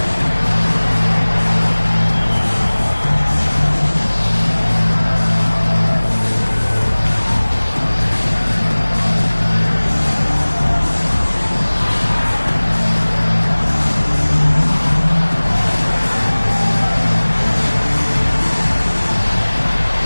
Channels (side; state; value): both; inverted; correlation -1.00